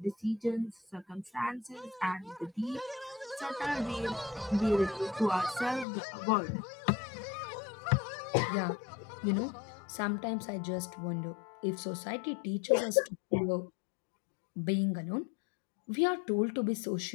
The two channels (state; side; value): drops out; right; at 5.9 s